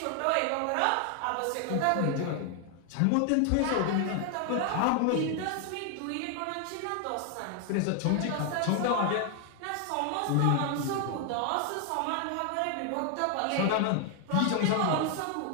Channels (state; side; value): different; both; correlation 0.00